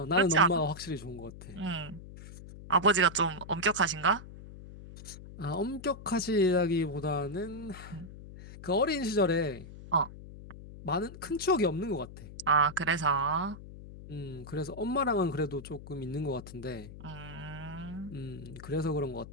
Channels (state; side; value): noise; left; hum, 15 dB below the sound